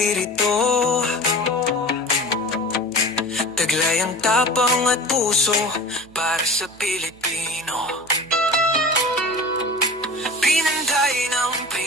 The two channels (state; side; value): noise; right; hum, 26 dB below the sound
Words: Taglay ang tapang at puso para sa Pilipino. Pinanday ng